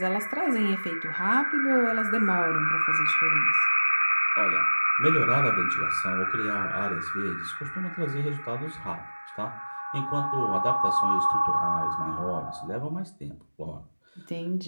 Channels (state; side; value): inverted; both; correlation -1.00